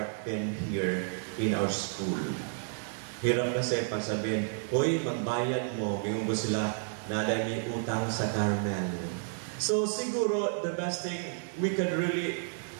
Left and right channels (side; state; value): left; silent; 57 dB below the other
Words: been here in our school. Hirap kasi pag sabihin, hoy, magbayad mo, bigyan mo sila, naday may utang sa Carmel. So siguro, the best thing we can really